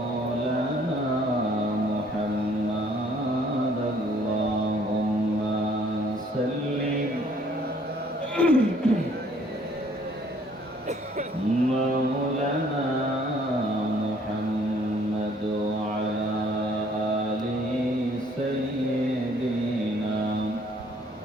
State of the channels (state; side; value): normal; both; correlation 0.61